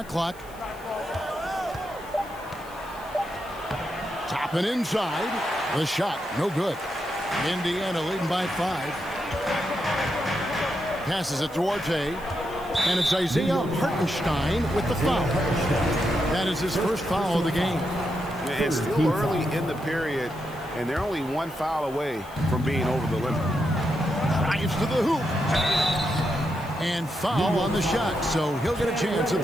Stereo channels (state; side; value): noise; left; hiss, 22 dB below the sound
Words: clock. Toppin inside. The shot, no good. Indiana leading by 5. Passes it to Duarte. And it's Isaiah Hartenstein with the foul. That is his first foul of the game. It's still early in the period, and they're only one foul away from being over the limit. Drives to the hoop. And foul on the shot, so he'll get a chance at